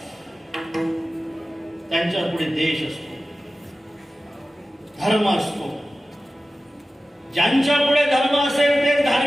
त्यांच्या पुढे देश असतो, धर्म असतो. ज्यांच्या पुढे धर्म असेल ते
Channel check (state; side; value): normal; both; correlation 0.95